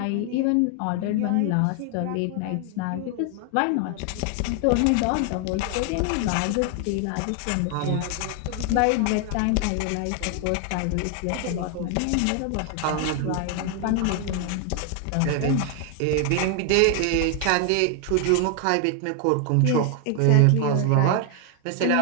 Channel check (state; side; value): different; both; correlation 0.00